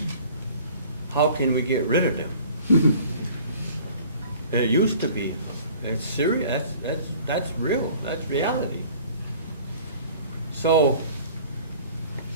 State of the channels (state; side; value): inverted; both; correlation -0.49